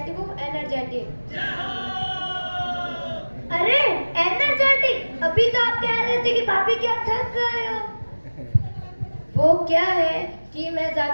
हूँ, एनर्जेटिक। अरे एनर्जेटिक, अभी तो आप कह रहे थे कि भाभी क्या थक गए हो। वो क्या है कि मैं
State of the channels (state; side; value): inverted; both; correlation -1.00